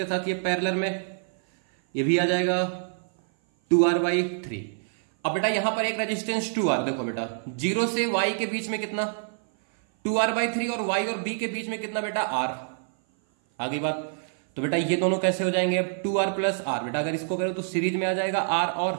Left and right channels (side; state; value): left; silent; 56 dB below the other